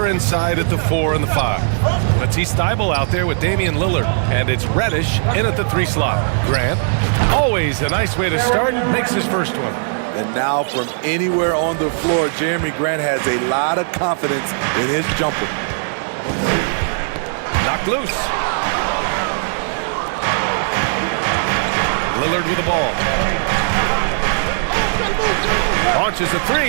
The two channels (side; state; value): left; silent; 67 dB below the other